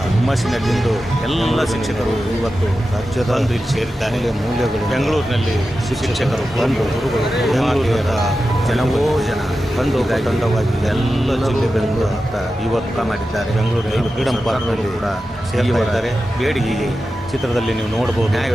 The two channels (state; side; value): normal; both; correlation 0.92